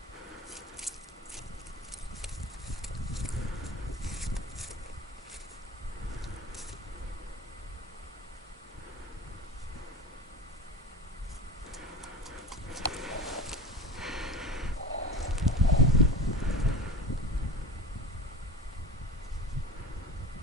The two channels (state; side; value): normal; both; correlation 0.31